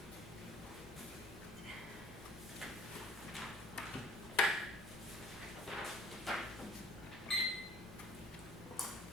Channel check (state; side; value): normal; both; correlation 0.53